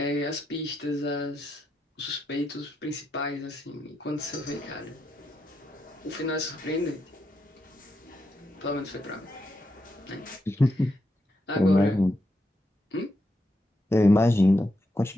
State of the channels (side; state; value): both; normal; correlation 0.83